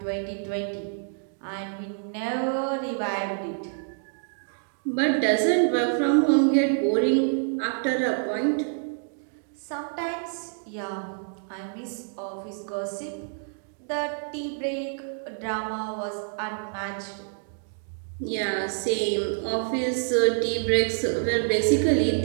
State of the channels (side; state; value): left; silent; digital silence